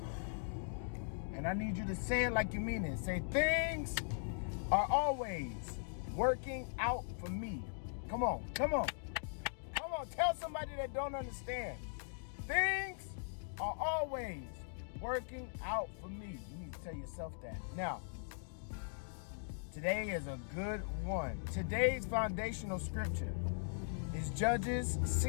and I need you to say it like you mean it. Say, things are always working out for me. Come on. Tell somebody that don't understand. Things are always working out for me. You need to tell yourself that. Now, today is a good one. Today's foundational scripture is Judges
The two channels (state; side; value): silent; right; digital silence